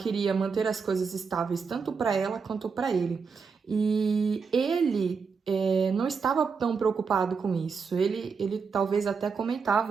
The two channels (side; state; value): left; quieter; 5.4 dB